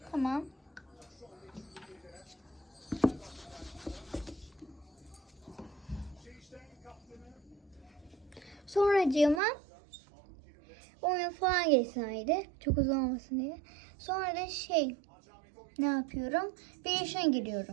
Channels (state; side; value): drops out; left; at 9.4 s